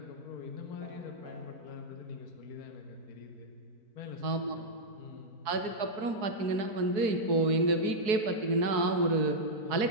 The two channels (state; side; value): late; left; 4.7 ms